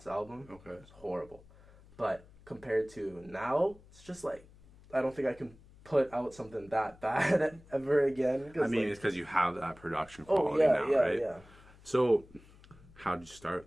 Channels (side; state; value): left; noise; hum, 24 dB below the sound